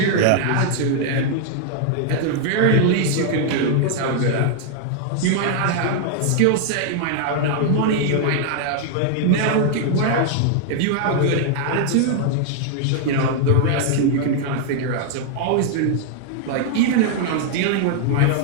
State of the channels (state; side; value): different; both; correlation 0.00